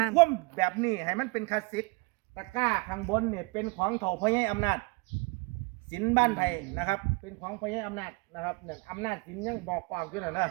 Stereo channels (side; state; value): left; quieter; 29.2 dB